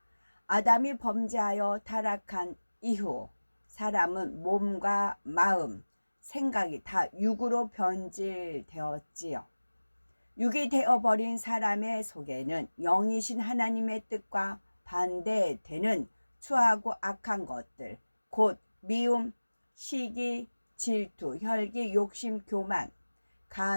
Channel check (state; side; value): inverted; both; correlation -1.00